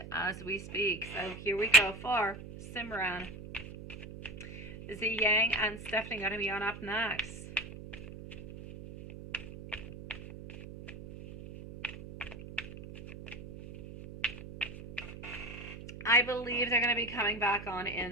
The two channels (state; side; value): noise; right; hum, 12 dB below the sound